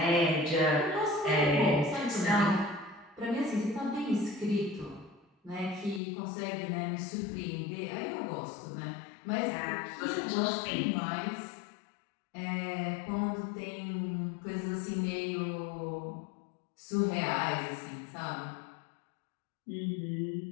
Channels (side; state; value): right; drops out; at 6.0 s